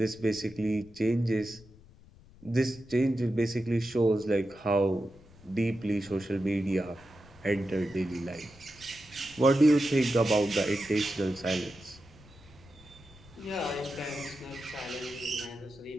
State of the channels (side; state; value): left; noise; rumble, 23 dB below the sound